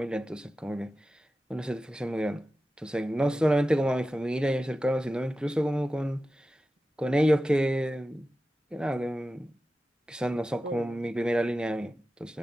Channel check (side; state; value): both; normal; correlation 0.94